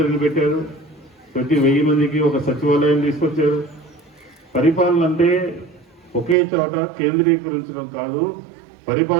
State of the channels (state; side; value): drops out; left; at 6.4 s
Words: పెట్టారు, ప్రతి 1000 మందికి ఒక సచివాలయం తీసుకొచ్చారు. పరిపాలన అంటే ఒకే చోట కేంద్రీకరించడం కాదు,